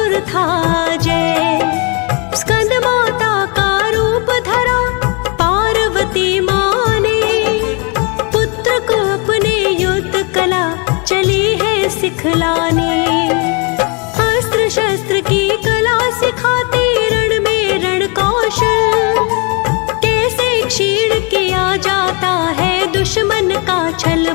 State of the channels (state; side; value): quieter; right; 32.9 dB